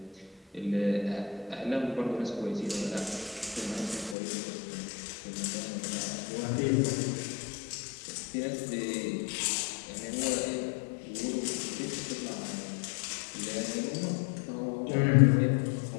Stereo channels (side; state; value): right; drops out; at 4.2 s